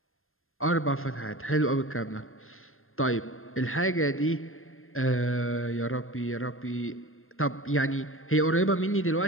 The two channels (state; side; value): late; right; 0.60 ms